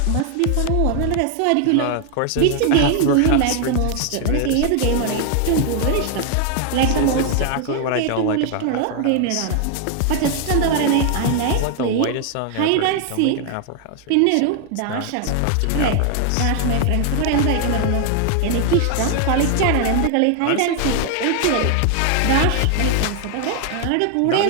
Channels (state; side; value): different; both; correlation 0.00